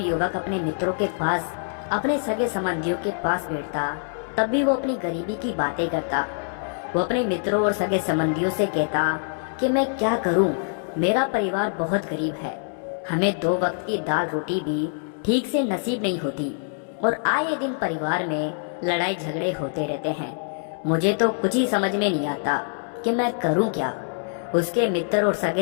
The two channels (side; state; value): right; silent; digital silence